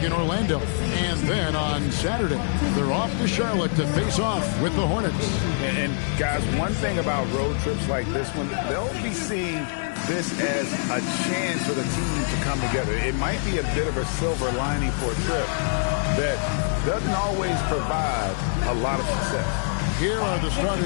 in Orlando. And then on Saturday, they're off to Charlotte to face off with the Hornets. And guys, one thing about road trips like this one, they'll be seeing this as a chance for the team to come together. It might be a bit of a silver lining for a trip that doesn't always provide a lot of success. Here are the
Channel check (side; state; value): right; silent; digital silence